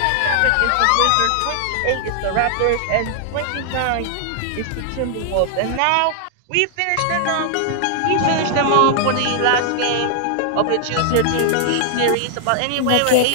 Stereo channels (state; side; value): different; both; correlation 0.00